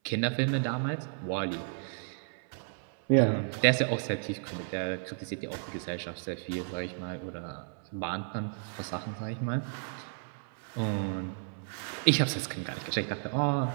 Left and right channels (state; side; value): silent; left; 56 dB below the other